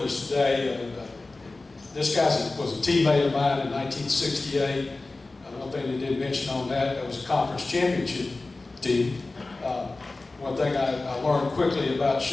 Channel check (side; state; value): right; quieter; 3.3 dB